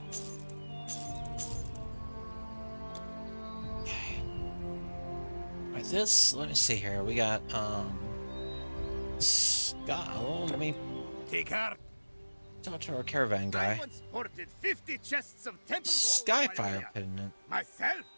This, let me see here. We got Scott. Oh, let me take heart. Talk to our caravan guy. I once ported 50 chests of temple Skyfire pendant. Myself.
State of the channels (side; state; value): both; inverted; correlation -1.00